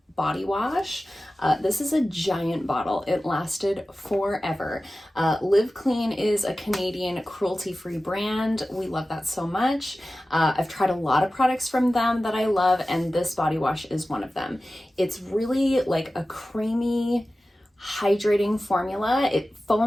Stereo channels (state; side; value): normal; both; correlation 0.95